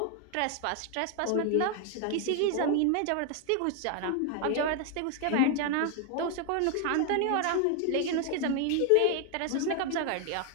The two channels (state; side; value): different; both; correlation 0.00